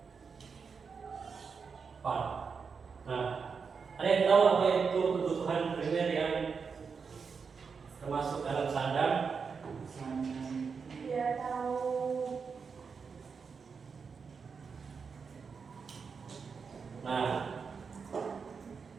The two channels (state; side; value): quieter; left; 5.6 dB